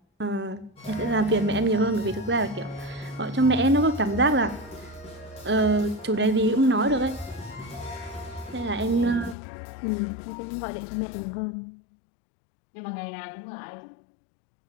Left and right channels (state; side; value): drops out; right; at 9.3 s